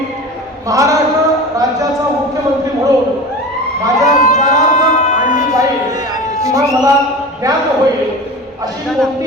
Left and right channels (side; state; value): both; normal; correlation 0.33